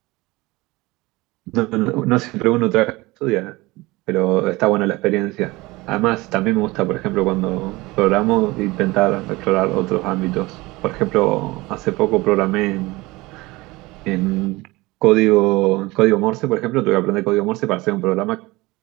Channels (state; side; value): quieter; left; 21.6 dB